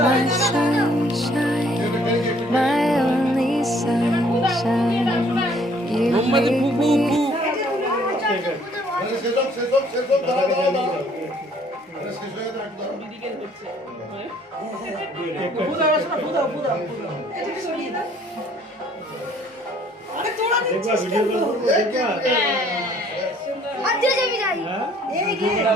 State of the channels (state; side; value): normal; both; correlation 0.60